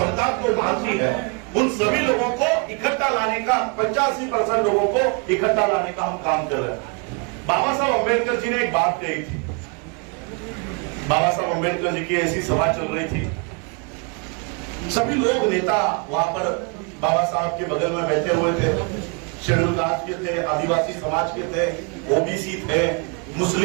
को मानती है, उन सभी लोगों को इकट्ठा लाने का, 85% लोगों को इकट्ठा लाने का हम काम कर रहे हैं। बाबा साहब अम्बेडकर जी ने एक बात कही थी। बाबा साहब अम्बेडकर जी की ऐसी सभा चल रही थी, सभी लोग नेता वहां पर बाबा साहब के बगल में बैठे हुए थे। शेड्यूल कास्ट के थे, आदिवासी समाज के थे, ओबीसी थे,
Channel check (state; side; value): quieter; left; 34.7 dB